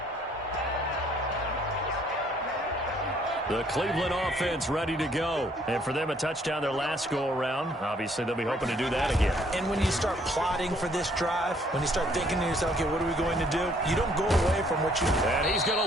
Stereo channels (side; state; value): both; normal; correlation 0.64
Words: The Cleveland offense ready to go. And for them, a touchdown their last go-around. Obviously, they'll be hoping to do that again. And when you start plotting for this drive, when you start thinking to yourself, okay, what are we going to do? You don't go away from what you do. And he's going